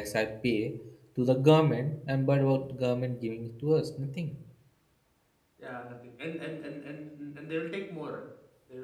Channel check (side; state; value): both; identical; correlation 1.00